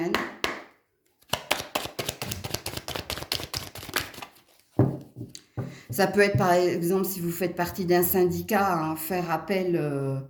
Ça peut être, par exemple, si vous faites partie d'un syndicat, hein, faire appel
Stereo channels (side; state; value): both; identical; correlation 1.00